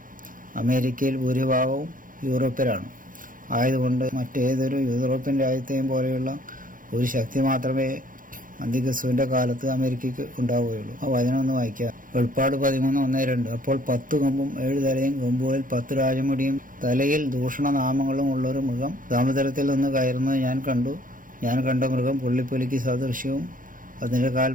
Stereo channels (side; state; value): left; late; 0.40 ms